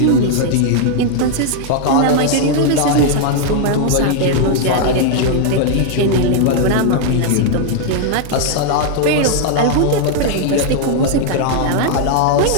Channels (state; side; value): different; both; correlation 0.00